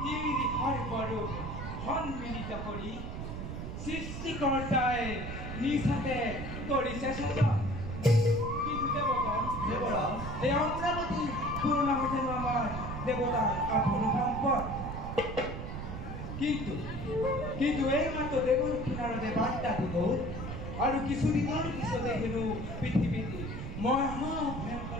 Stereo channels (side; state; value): right; noise; rumble, 6 dB below the sound